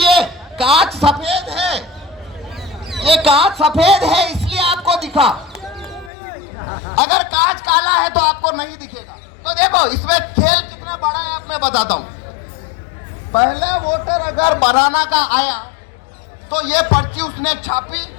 कांच सफेद है, ये कांच सफेद है इसलिए आपको दिखा। अगर कांच काला है तो आपको नहीं दिखेगा। तो देखो इसमें खेल कितना बड़ा है, आप मैं बताता हूं। पहले वोटर अगर बनाना का आया तो ये पर्ची उसने छापी,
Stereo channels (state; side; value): drops out; right; at 6.1 s